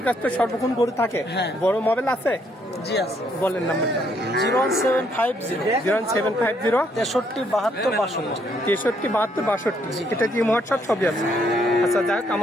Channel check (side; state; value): both; normal; correlation 0.71